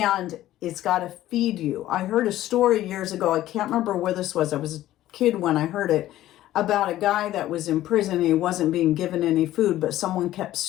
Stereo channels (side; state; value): right; quieter; 14.2 dB